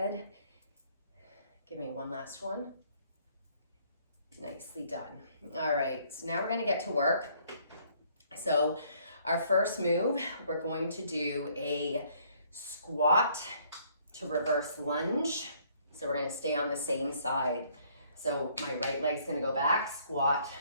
Give me one last one. Nicely done. All right, so now we're gonna get to work. So our first move, we're going to do a squat to reverse lunge. So we're gonna stay on the same side. So my right leg's gonna go back, squat,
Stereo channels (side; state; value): both; inverted; correlation -0.64